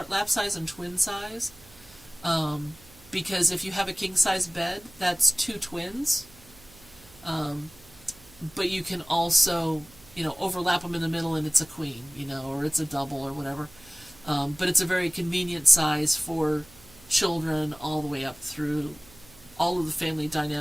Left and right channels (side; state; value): right; noise; hum, 24 dB below the sound